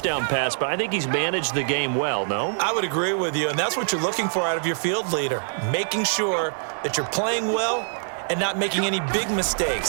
pass, but I think he's managed the game well, no? I would agree with you, and that's what you're looking for out of your field leader, making sure that you're playing well and not making any big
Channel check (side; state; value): left; silent; 62 dB below the other